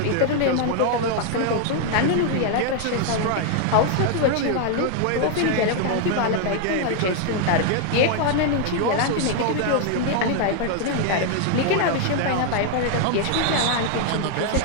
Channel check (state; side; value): different; both; correlation 0.00